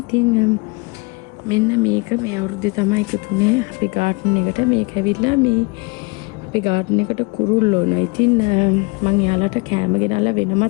ඉතින් මෙන්න මේක මේ අවුරුද්දේ තමයි එකතුනේ අපේ ගාඩන් එකට. මේක ඇවිල්ලා මේ අපේ ගාඩන් එකට කුරුල්ලෝ නෝ. ඉතින් මම එයාලට කෑම ගෙනල්ලා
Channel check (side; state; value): right; quieter; 28.3 dB